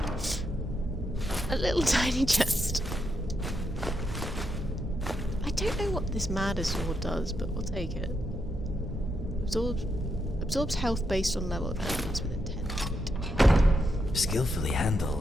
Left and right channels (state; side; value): normal; both; correlation 0.82